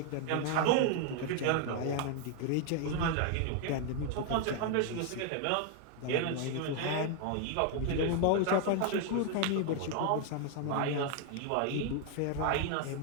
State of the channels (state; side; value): different; both; correlation 0.00